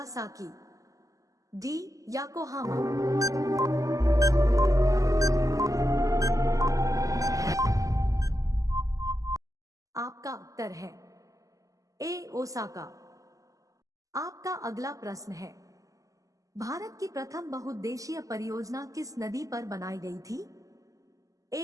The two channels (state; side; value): late; left; 0.16 ms